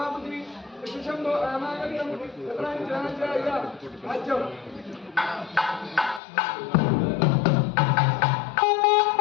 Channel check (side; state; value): right; drops out; at 6.2 s